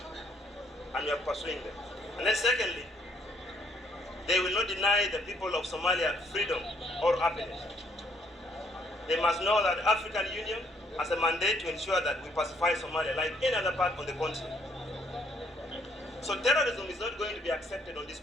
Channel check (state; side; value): normal; both; correlation 0.67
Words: and we are pursuing them. And then secondly, they will not deny the people of Somalia freedom or happiness. They must know that the African Union has a mandate to ensure that we pacify Somalia like any other part of the continent. So terrorism is not going to be accepted on this